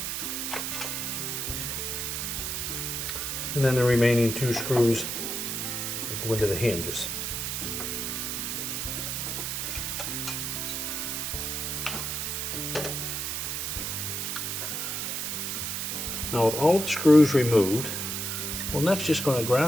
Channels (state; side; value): noise; right; hiss, 2 dB below the sound